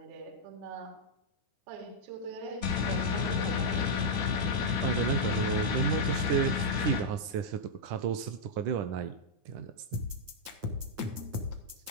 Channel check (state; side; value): late; left; 9.8 ms